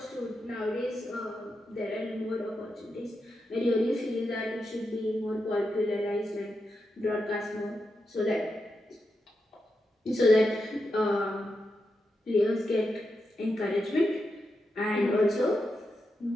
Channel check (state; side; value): normal; both; correlation 0.87